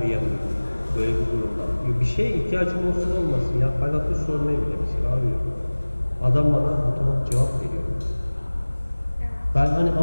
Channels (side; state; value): both; inverted; correlation -1.00